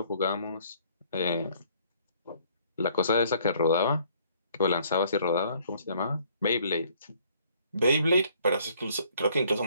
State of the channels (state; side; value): inverted; both; correlation -0.62